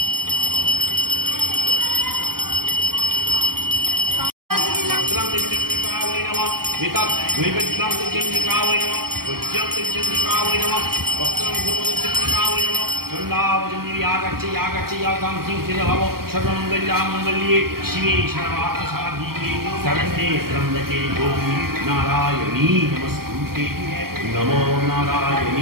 सर्वमंगल्ये शिवे सर्वार्थसाधिके शरण्ये त्र्यंबके गौरी नारायणी नमस्तुते। नमो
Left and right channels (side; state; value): left; late; 0.93 ms